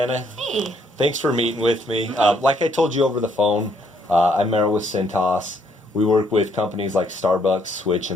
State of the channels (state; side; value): normal; both; correlation 0.69